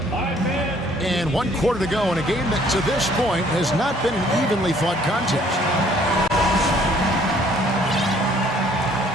And 1 quarter to go in a game that to this point has not been an evenly fought contest.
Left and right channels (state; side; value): normal; both; correlation 0.60